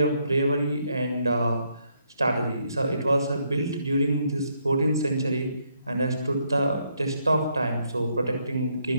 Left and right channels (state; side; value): inverted; both; correlation -0.74